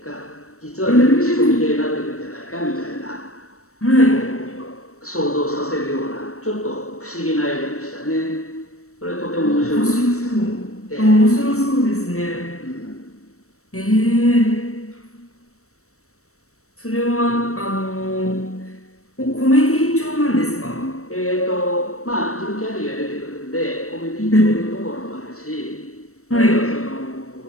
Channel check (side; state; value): right; late; 0.64 ms